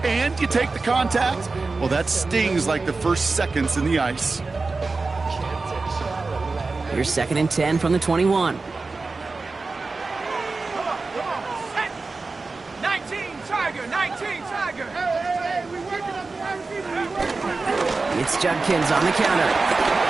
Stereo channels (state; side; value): quieter; left; 3.8 dB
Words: and you take the contact, well, that stings like the first seconds in the ice. Here's second and 10 from the 21. 19 Tiger! Hey, we working up the wide receiver. It's Judkins on the counter.